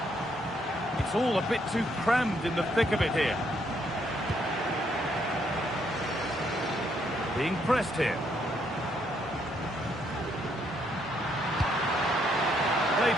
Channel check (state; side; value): normal; both; correlation 0.72